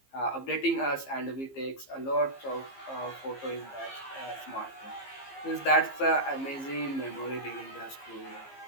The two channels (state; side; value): late; right; 15 ms